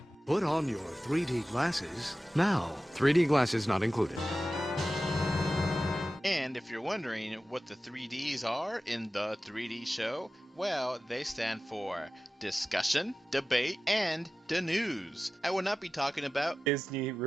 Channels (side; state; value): both; normal; correlation 0.94